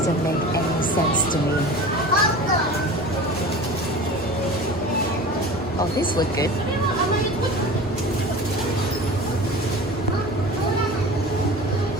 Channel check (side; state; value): both; normal; correlation 0.36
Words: make any sense to me. Oh, these look good.